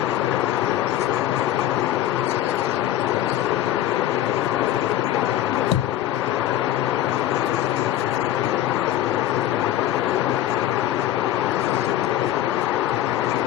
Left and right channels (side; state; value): right; quieter; 12.6 dB